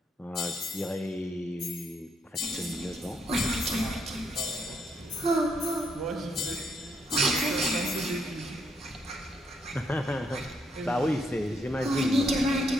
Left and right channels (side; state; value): both; normal; correlation 0.75